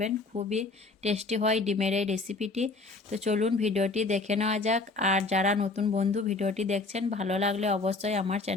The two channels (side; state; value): right; quieter; 3.5 dB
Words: খুবই টেস্টি হয় ডিমের এই রেসিপিটি। তো চলুন ভিডিওটি দেখে নেওয়া যাক। আর যারা নতুন বন্ধু ভিডিওটি দেখছেন, ভালো লাগলে অবশ্যই আমার